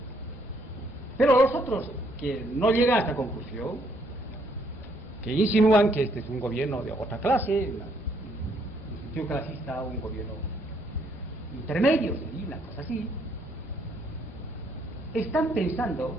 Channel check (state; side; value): normal; both; correlation 0.69